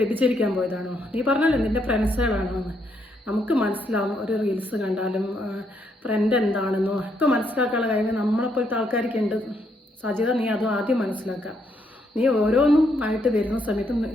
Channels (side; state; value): both; normal; correlation 0.75